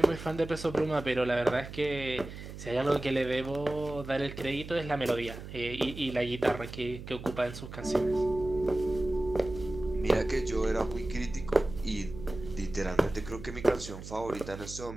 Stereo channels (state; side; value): noise; right; hum, 11 dB below the sound